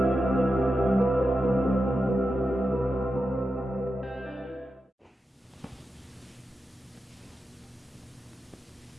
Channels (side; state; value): both; normal; correlation 0.89